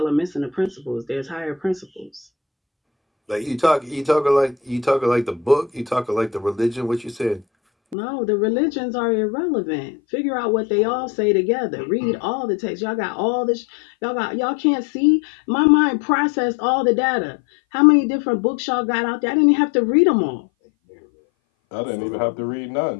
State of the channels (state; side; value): drops out; right; at 8.0 s